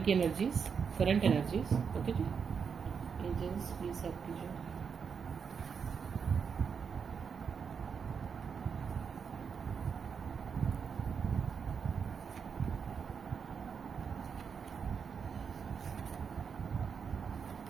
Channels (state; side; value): quieter; left; 6.4 dB